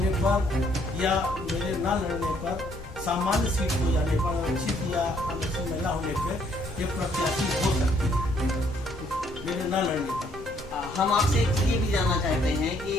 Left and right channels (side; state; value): both; normal; correlation 0.66